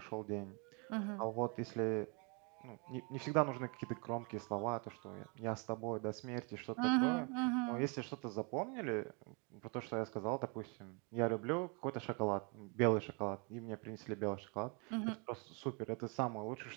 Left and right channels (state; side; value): quieter; left; 33.5 dB